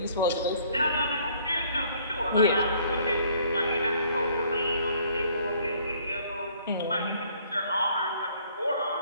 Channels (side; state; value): both; inverted; correlation -0.60